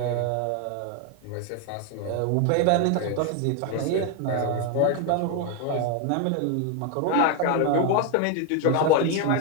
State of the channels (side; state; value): both; different; correlation 0.01